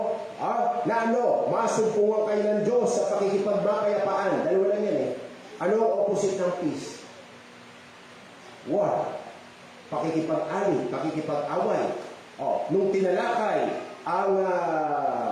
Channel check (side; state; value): both; identical; correlation 1.00